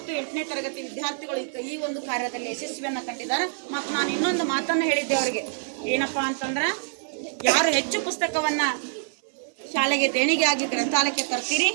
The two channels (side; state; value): left; silent; 61 dB below the other